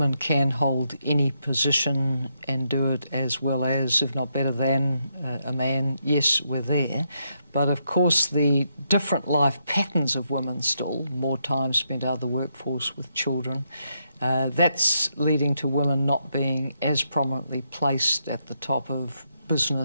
can hold any position and do it as well as, if not better than, a man, yes, we're there. But of course the different life patterns of women still, more time spent out of the workforce with children, that's leading to women not being as prominently placed at the top of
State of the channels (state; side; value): inverted; both; correlation -0.79